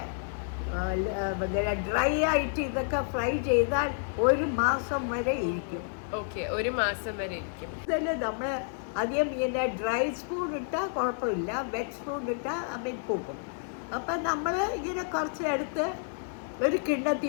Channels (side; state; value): right; silent; 58 dB below the other